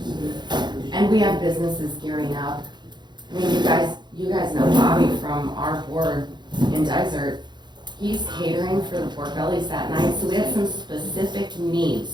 And we have businesses gearing up. I mean, you guys know Bobby from our board in Desert. He's catering for the pork bellies that night, so we have some specific needs.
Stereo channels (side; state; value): left; late; 0.21 ms